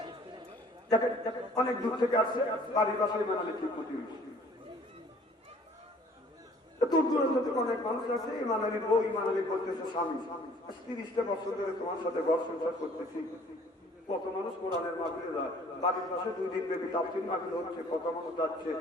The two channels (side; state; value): both; normal; correlation 0.55